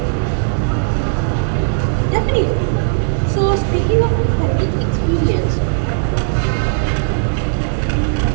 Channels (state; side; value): silent; left; digital silence